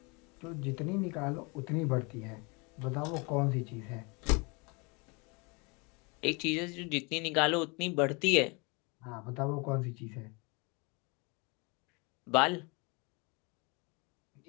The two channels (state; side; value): quieter; right; 29.7 dB